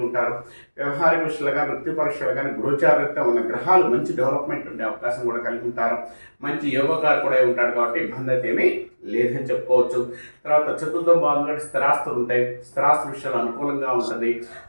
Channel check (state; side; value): inverted; both; correlation -1.00